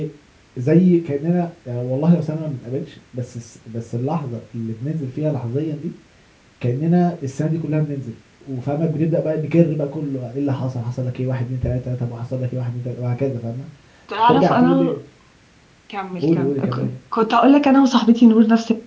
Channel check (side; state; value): both; identical; correlation 1.00